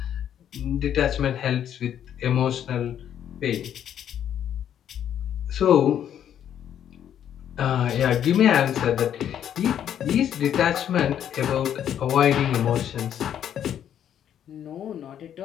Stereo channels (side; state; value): right; quieter; 9.8 dB